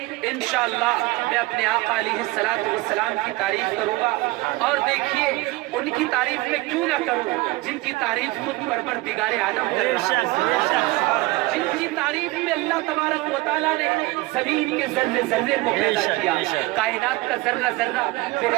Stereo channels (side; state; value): left; quieter; 21.0 dB